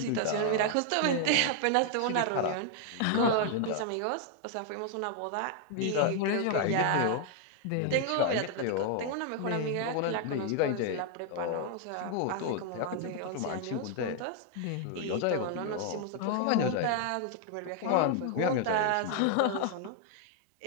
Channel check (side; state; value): both; different; correlation 0.00